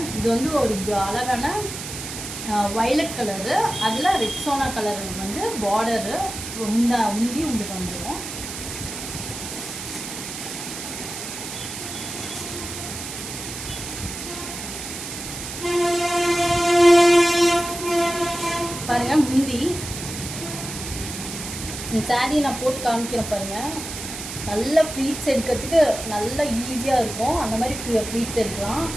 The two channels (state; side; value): noise; right; hiss, 8 dB below the sound